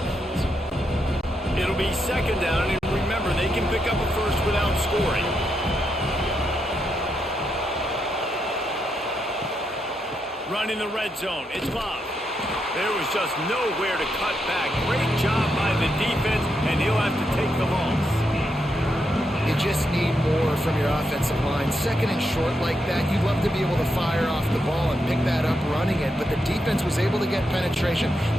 bounds? It'll be second down, and remember, they can pick up a first without scoring. Run in the red zone. It's Bob. There was just nowhere to cut back. Great job by the defense, and he'll have to take the loss. You just need more from your offensive line. Second and short like that, you'd love to be able to fire off the ball and pick that up running it, but the defense was able to get penetration.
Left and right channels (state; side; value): normal; both; correlation 0.82